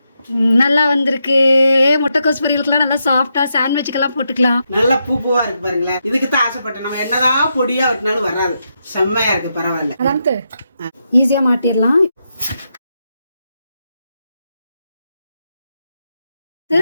நல்லா வந்திருக்கு. முட்டைக்கோஸ் பொரியலுக்குலாம் நல்லா சாஃப்டா சாண்ட்விச்சுக்கெல்லாம் போட்டுக்கலாம். நல்லா பூவா இருக்கு பாருங்களேன். இதுக்கு தான் ஆசைப்பட்டேன். நம்ம என்னதான் பொடியா வெட்டினாலும் வராது. செம்மையா இருக்கு, பரவாயில்ல. அதான் ஈஸியா மாட்டிடலாம்.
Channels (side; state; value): both; inverted; correlation -0.83